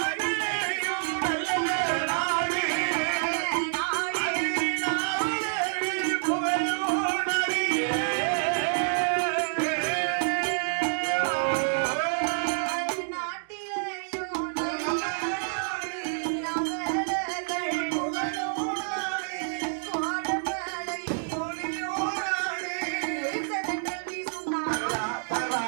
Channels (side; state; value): left; silent; digital silence